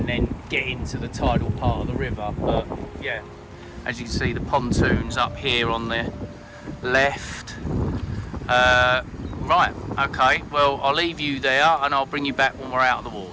then get into the tidal part of the river. But yeah, as you can see, the pontoon's up here on the left. Right, okay, well, I'll leave you there and I'll bring you back when we're out of the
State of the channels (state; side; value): identical; both; correlation 1.00